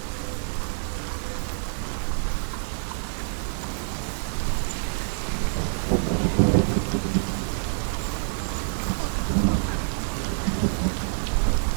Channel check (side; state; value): left; silent; digital silence